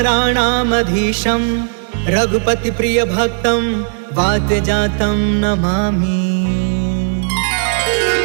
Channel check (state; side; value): silent; left; 69 dB below the other